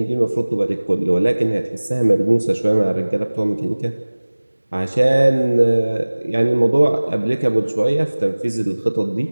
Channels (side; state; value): both; inverted; correlation -1.00